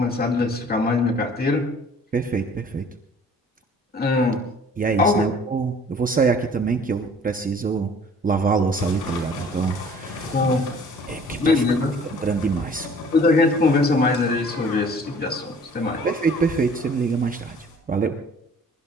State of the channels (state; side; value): normal; both; correlation 0.52